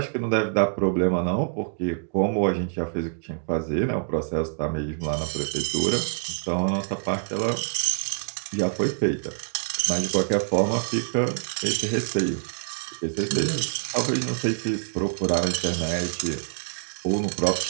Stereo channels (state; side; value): silent; left; digital silence